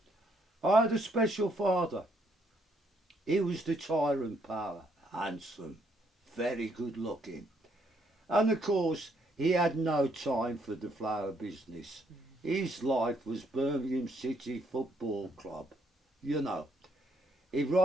I had a special father. He was the tyrant power, handsome, very good looking. And of course, he had no time for the flower business. His life was Birmingham City Football Club, you know. He'd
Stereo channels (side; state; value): both; normal; correlation 0.71